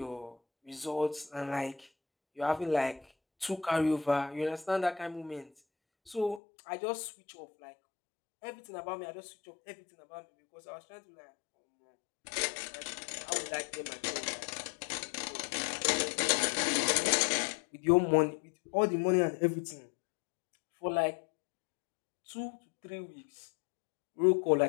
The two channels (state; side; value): drops out; right; at 6.4 s